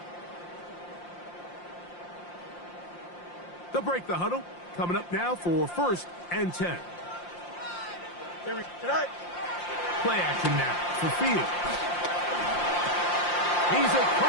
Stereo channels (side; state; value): right; late; 5.7 ms